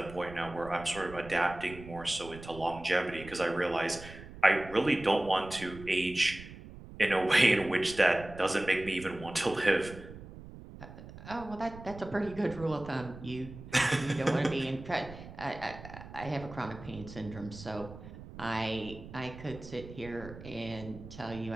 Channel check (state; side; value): noise; right; rumble, 15 dB below the sound